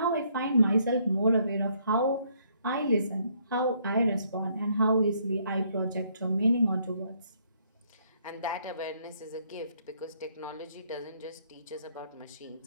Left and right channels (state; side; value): inverted; both; correlation -0.69